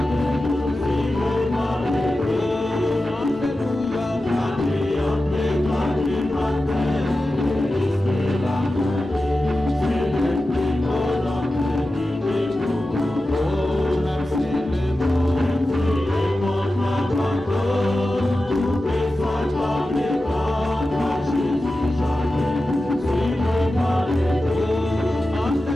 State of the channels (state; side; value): normal; both; correlation 0.93